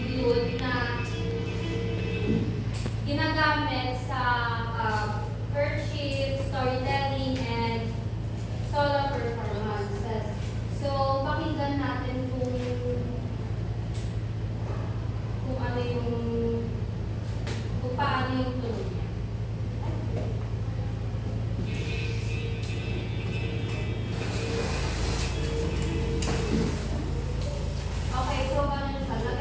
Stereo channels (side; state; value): both; identical; correlation 1.00